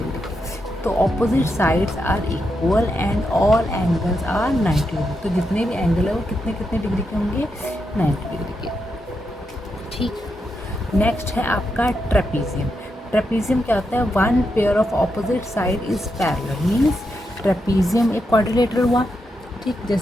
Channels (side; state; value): both; normal; correlation 0.84